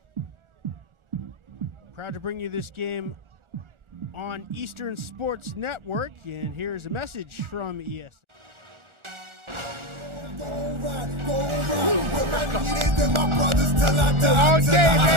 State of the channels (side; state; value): left; late; 1.4 ms